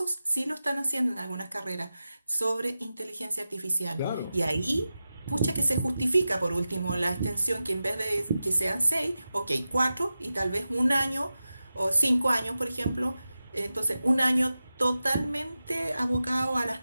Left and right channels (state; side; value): inverted; both; correlation -0.93